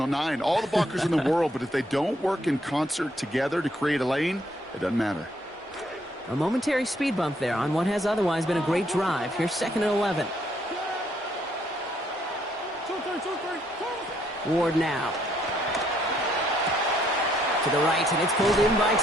9. All the blockers in the world, but if they don't work in concert together to create a lane, it doesn't matter. A momentary speed bump there on what has otherwise been a great drive. Here's 2nd and 11. Ward now. To the right, and it's pulled in by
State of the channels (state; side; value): normal; both; correlation 0.70